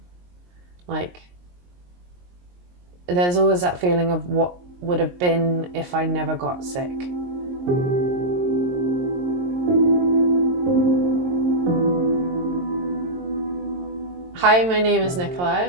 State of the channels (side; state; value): left; late; 22 ms